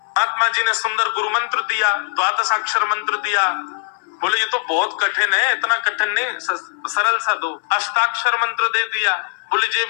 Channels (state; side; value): silent; right; 60 dB below the other